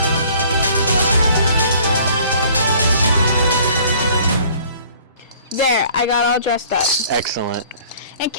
There, I got all dressed up. Excellent. In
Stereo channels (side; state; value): both; inverted; correlation -0.54